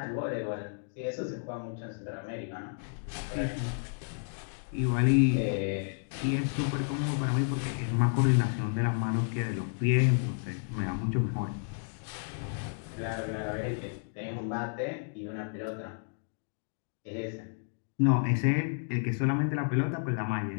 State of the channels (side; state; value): right; silent; digital silence